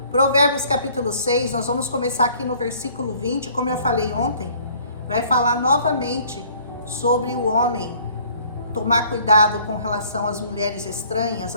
Provérbios capítulo 6, nós vamos começar aqui no versículo 20, como eu falei ontem, vai falar novamente sobre o homem tomar cuidado com relação às mulheres estranhas,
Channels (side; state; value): both; inverted; correlation -0.56